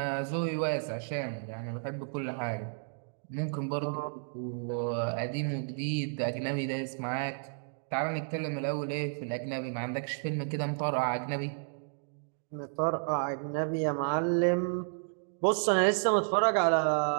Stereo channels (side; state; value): left; silent; digital silence